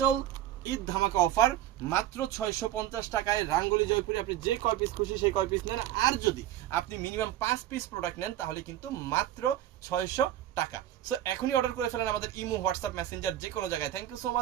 ঈদ ধামাকা অফার, মাত্র 650 টাকায় রাঙ্গুলি জয়পুরি। আপনি যে কয় পিস খুশি সেই কয় পিস নেন, আর যদি আপনি মিনিমাম 5 পিস প্রোডাক্ট নেন তাহলে কিন্তু মাত্র 600 টাকা। সো এখনই অর্ডার করে ফেলেন আমাদের ইমো, হোয়াটসঅ্যাপ, মেসেঞ্জার, যে কোনো জায়গায়। থ্যাংক ইউ সো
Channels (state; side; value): quieter; left; 12.7 dB